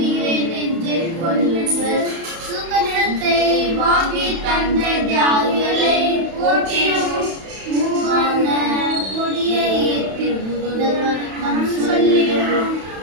நெஞ்சில் கொள்ளுங்கள். சுகநிலத்தை வாங்கி தந்த தியாகிகளை போற்றினோம். மூவான கொடியை ஏற்றி முதல் வணக்கம் சொல்லினோம்.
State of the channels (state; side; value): late; left; 31 ms